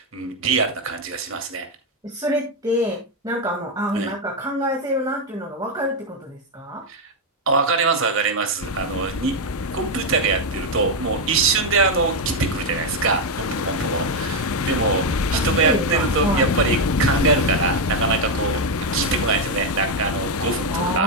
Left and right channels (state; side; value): normal; both; correlation 0.04